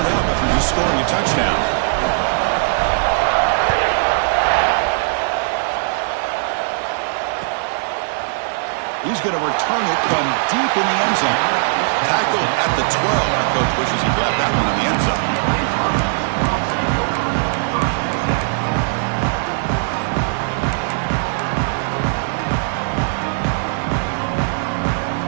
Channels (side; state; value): left; silent; digital silence